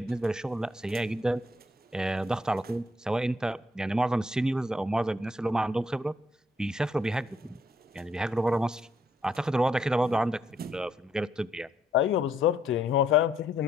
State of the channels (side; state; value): both; normal; correlation 0.71